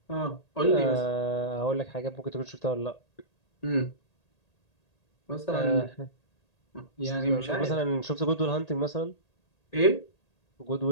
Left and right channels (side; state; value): right; late; 1.8 ms